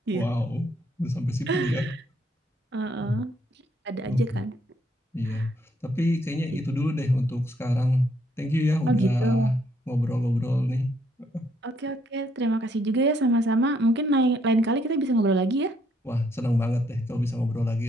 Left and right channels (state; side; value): normal; both; correlation 0.70